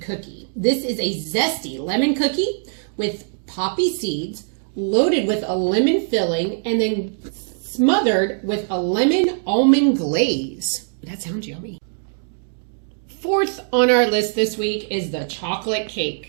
cookie. This is a zesty lemon cookie with poppy seeds loaded with a lemon filling and then smothered with a lemon almond glaze. That sounds yummy. Fourth on our list this week is the chocolate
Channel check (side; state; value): left; silent; digital silence